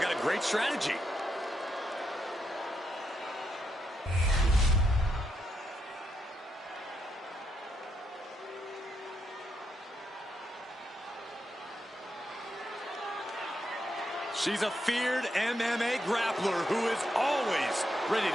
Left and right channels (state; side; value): normal; both; correlation 0.81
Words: a great strategy. She's a feared MMA grappler who is always ready